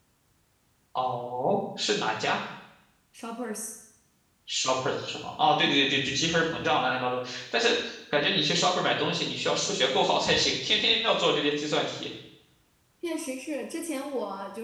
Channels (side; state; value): both; identical; correlation 1.00